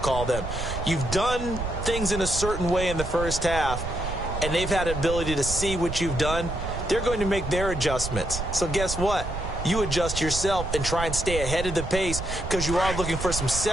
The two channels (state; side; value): noise; right; rumble, 5 dB below the sound